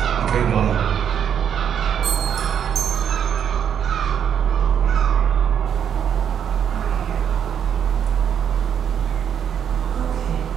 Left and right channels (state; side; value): quieter; left; 8.5 dB